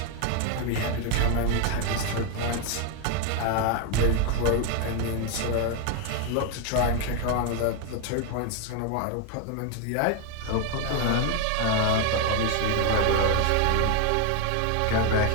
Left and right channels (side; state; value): both; different; correlation 0.01